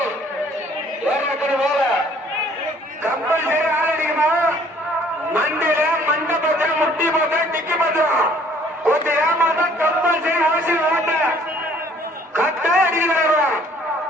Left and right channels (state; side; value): normal; both; correlation 0.58